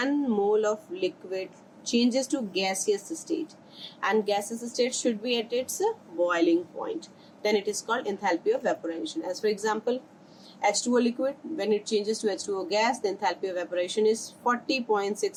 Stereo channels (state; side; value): identical; both; correlation 1.00